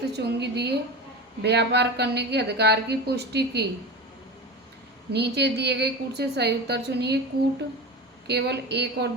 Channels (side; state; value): both; normal; correlation 0.27